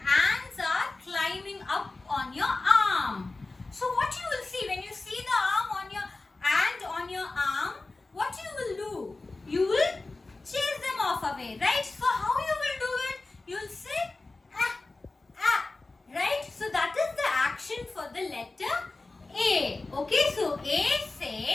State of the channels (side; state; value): right; quieter; 3.3 dB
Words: ants are climbing up on your arm. So what you will see when you see the arm on your ant on your arm, what you will do? You will chase them off away, right? So how you will do it? You will say ah, ah, right? So that is the action for the letter A. Okay, so A